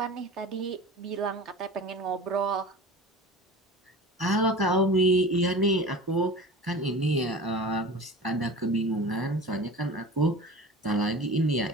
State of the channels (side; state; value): both; normal; correlation 0.36